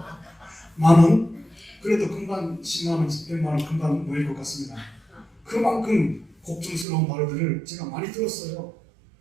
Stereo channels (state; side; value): drops out; left; at 6.9 s